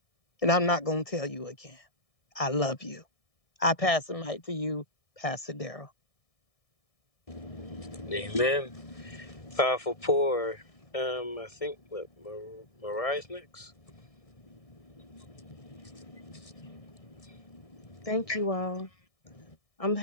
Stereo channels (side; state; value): right; late; 1.6 ms